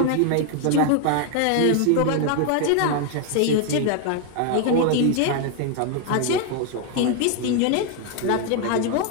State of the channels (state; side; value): different; both; correlation 0.00